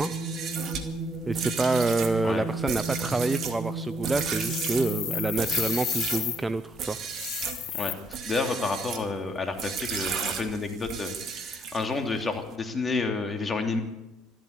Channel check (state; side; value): normal; both; correlation 0.70